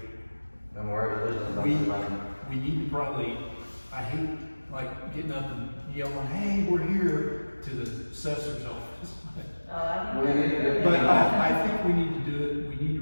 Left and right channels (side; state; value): both; inverted; correlation -1.00